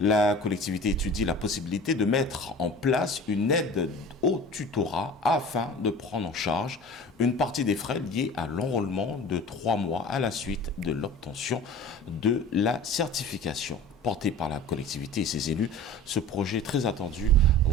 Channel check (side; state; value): both; normal; correlation 0.40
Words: La collectivité étudie la possibilité de mettre en place une aide au tutorat afin de prendre en charge une partie des frais liés à l'enrôlement de 3 mois à la suite de l'obtention de la certification. Porté par la collectivité et ses élus, ce projet très attendu